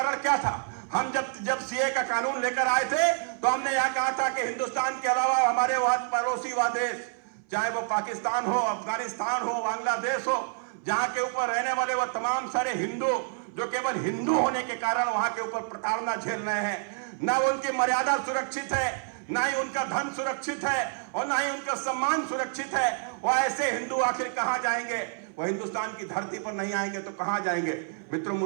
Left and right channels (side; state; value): left; silent; 59 dB below the other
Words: क्या था। हम जब सीए का कानून लेकर आए थे तो हमने यह कहा था कि हिंदुस्तान के अलावा हमारे वह पड़ोसी वह देश, चाहे वो पाकिस्तान हो, अफगानिस्तान हो, बांग्लादेश हो, जहां के ऊपर रहने वाले वह तमाम सारे हिंदू जो केवल हिंदू होने के कारण वहां के ऊपर प्रताड़ना झेल रहे हैं, ना उनकी मर्यादा सुरक्षित है, ना ही उनका धन सुरक्षित है और ना ही उनका सम्मान सुरक्षित है। वह ऐसे हिंदू आखिर कहां जाएंगे? वह हिंदुस्तान की धरती पर नहीं आएंगे तो कहां जाएंगे? मित्रों,